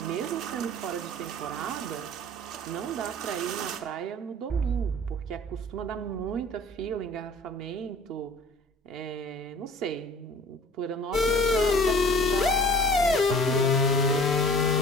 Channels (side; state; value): both; normal; correlation 0.46